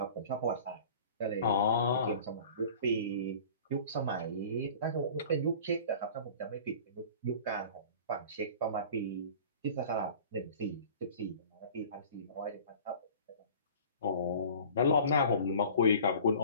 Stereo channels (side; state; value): both; inverted; correlation -0.44